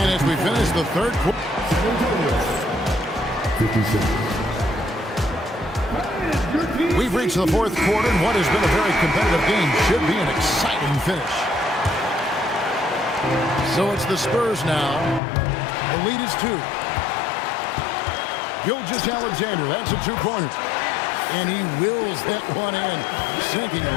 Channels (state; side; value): drops out; right; at 15.2 s